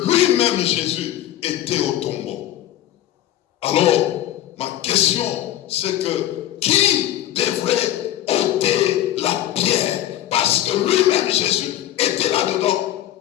lui-même, Jésus, était au tombeau. Alors, ma question, c'est que qui devrait ôter la pierre? Parce que lui-même, Jésus, était là-dedans.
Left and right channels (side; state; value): right; quieter; 12.9 dB